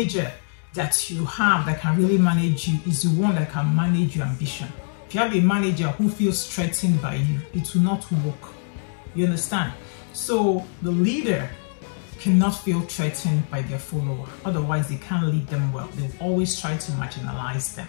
that you have that can really manage you is the one that can manage your ambition. If you have a manager who feels threatened by you, it will not work. You understand? So the leader cannot feel threatened by their follower. Otherwise, they can't lead them well. They'll always try to marginalize them.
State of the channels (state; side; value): silent; right; digital silence